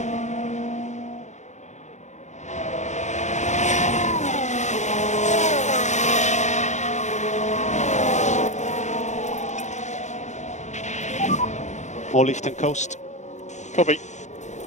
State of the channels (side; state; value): right; late; 0.34 ms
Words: More lift and coast. Copy.